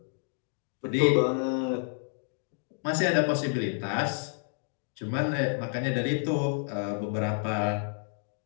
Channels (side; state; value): right; silent; 58 dB below the other